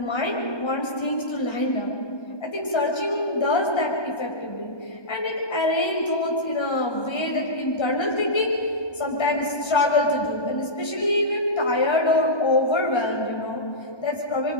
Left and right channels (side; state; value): right; late; 1.3 ms